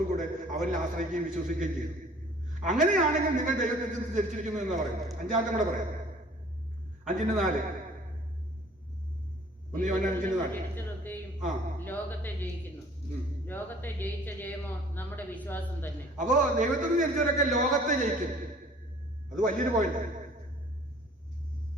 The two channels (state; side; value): normal; both; correlation 0.52